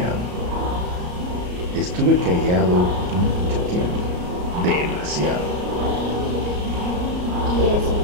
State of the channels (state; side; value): late; left; 34 ms